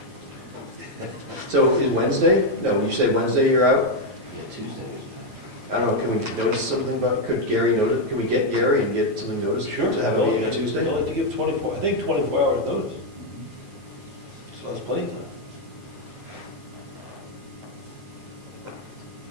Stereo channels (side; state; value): both; normal; correlation 0.02